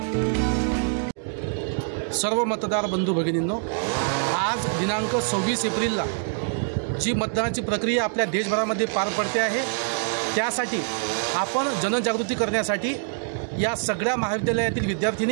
सर्व मतदार बंधू भगिनींनो, आज दिनांक 26 एप्रिलला जी मतदानाची प्रक्रिया आपल्या देशभरामध्ये पार पडते आहे, त्यासाठी आपण जनजागृती करण्यासाठी या सगळ्या महाविद्यालयातील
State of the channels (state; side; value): silent; left; digital silence